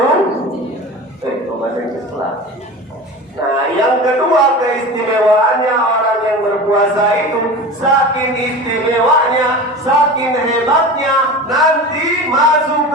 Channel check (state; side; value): normal; both; correlation 0.32